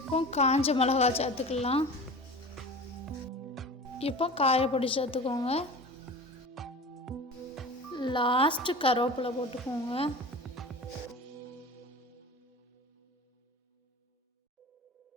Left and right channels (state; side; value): normal; both; correlation 0.35